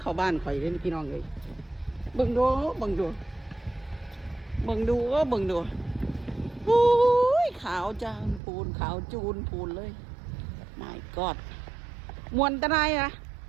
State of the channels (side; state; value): left; drops out; at 8.4 s